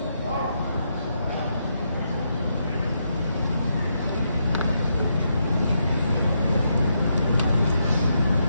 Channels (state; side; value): inverted; both; correlation -0.81